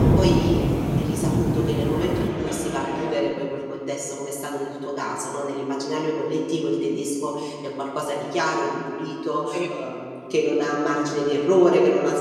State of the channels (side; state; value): both; identical; correlation 1.00